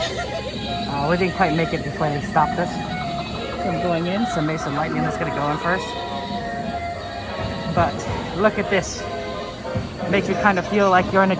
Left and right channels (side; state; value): both; identical; correlation 1.00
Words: We didn't quite make it before they stopped us from going in, so maybe some lightning is going to go in first. But look at this. It makes you kind of feel like you're in